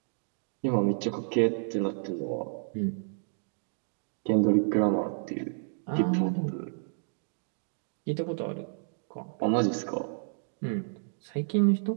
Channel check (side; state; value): left; silent; digital silence